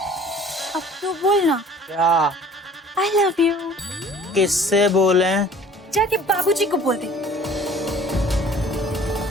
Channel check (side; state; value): both; normal; correlation 0.49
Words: अब तो बोलना। क्या? I love you. किससे बोले? जाके बाबूजी को बोल दे।